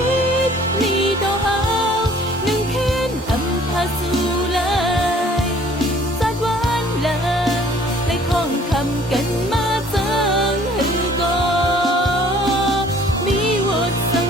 cánh má dâng hư go mi vượt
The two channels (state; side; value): normal; both; correlation 0.55